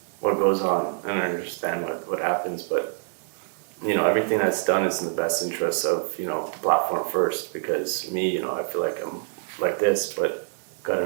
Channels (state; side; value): silent; left; digital silence